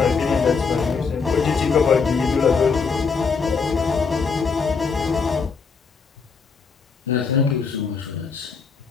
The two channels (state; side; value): quieter; right; 5.2 dB